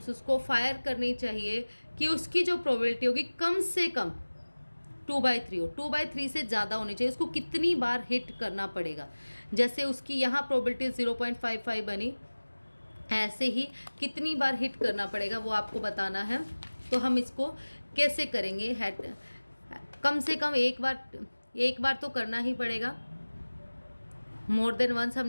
उसको फायर करनी चाहिए कि उसकी जो प्रोबेबिलिटी होगी कम से कम 2/3 हो, 2/3 से ज़्यादा होनी चाहिए, उसको कितनी बार हिट करना पड़ेगा। जैसे उसकी यहाँ प्रोबेबिलिटी 0.55 बनी, ऐसे ही कितनी बार हिट करना पड़ेगा वो आपको बताना है। तो हम इसको कैसे करेंगे, कम से कम एक बार तो करना ही पड़ेगा। मोर देन वंस हम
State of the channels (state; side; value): inverted; both; correlation -1.00